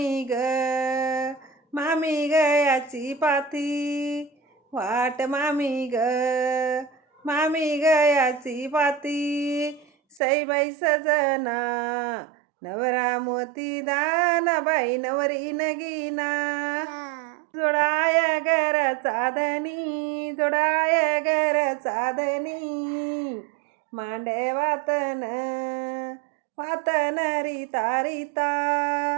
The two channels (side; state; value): left; drops out; at 10.2 s